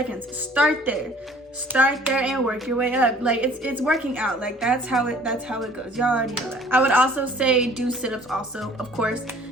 start there. Start there and work your way up. Like, it's working out. Like, that's how it goes. Y'all already know that. I would also say do sit-ups also, of course.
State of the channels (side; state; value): both; normal; correlation 0.53